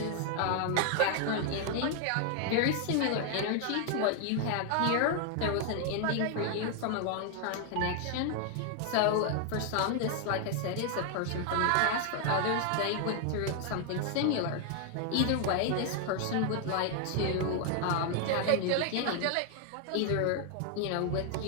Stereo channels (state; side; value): different; both; correlation 0.00